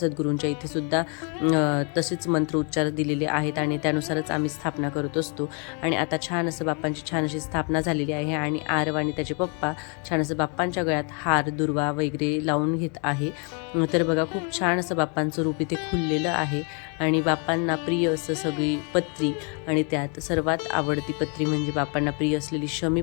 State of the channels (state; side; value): quieter; right; 37.2 dB